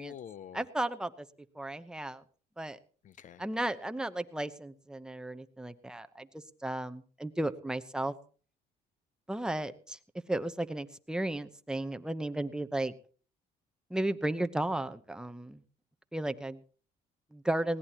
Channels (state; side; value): normal; both; correlation 0.93